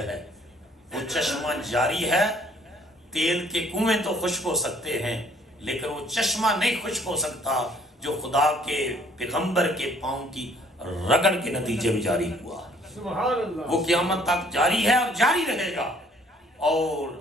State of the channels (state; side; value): normal; both; correlation 0.59